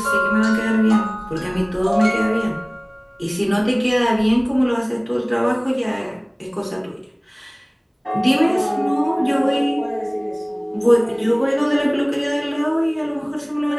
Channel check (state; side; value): identical; both; correlation 1.00